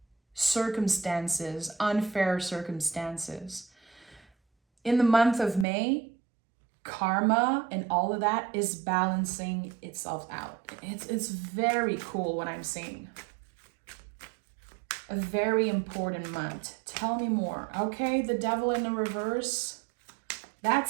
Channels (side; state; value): left; drops out; at 5.7 s